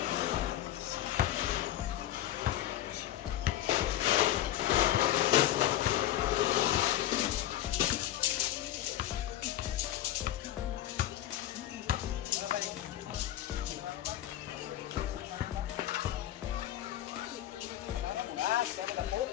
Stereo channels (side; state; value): right; quieter; 13.1 dB